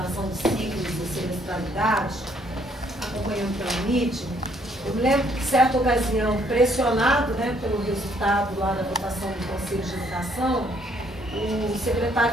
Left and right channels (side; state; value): both; normal; correlation 0.66